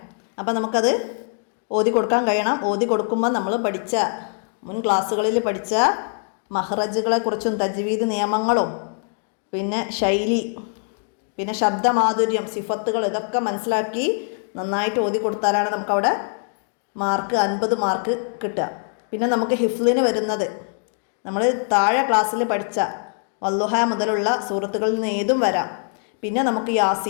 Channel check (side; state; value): right; silent; 59 dB below the other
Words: അപ്പം നമുക്കത് ഓതി കൊടുക്കാൻ കഴിയണം. ഓതി കൊടുക്കുമ്പോൾ നമ്മൾ പഠിച്ച മുൻ ക്ലാസ്സുകളിൽ പഠിച്ച മഹ്റജുകളെക്കുറിച്ചും തജ്വീദ് നിയമങ്ങളും പിന്നെ ശൈലി, പിന്നെ ശബ്ദമാധുര്യം, സിഫത്തുകൾ, ഇതൊക്കെ മനസ്സിലാക്കി നന്നായിട്ട് ഓതി കൊടുത്താലാണ് നമുക്കവിടെ 50 മാർക്ക് കിട്ടുക. പിന്നെ നമുക്ക് ഹിഫ്ലിന് വരുന്നത് നമ്മൾ താഴെ ക്ലാസ്സിൽ പഠിച്ച വല്ലുഹ മുതലുള്ള സൂറത്തുകളിൽ നിന്ന് ഏതും വരാം. പിന്നെ നമുക്ക്